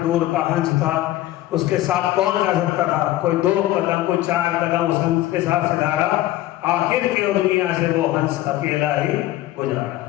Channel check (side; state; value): right; quieter; 15.2 dB